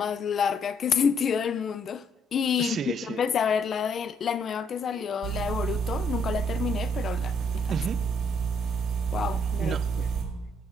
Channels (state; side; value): normal; both; correlation 0.70